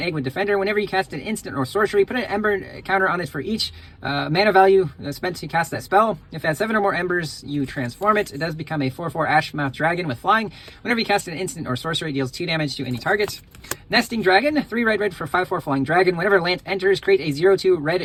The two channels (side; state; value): both; identical; correlation 1.00